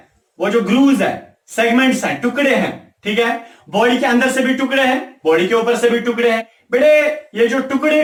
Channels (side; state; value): both; identical; correlation 1.00